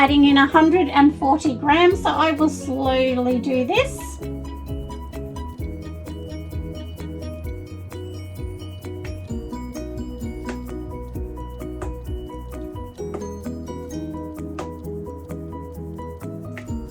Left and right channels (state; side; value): identical; both; correlation 1.00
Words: in 140 grams. So I will slowly do this.